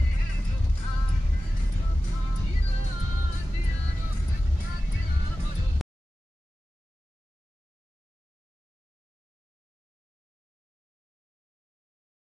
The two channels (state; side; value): normal; both; correlation 0.95